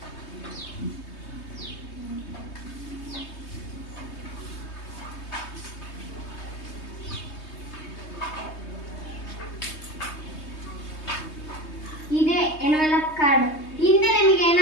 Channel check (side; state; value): right; late; 3.2 ms